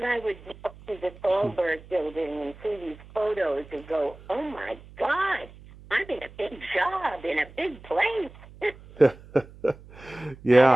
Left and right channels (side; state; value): right; noise; hum, 20 dB below the sound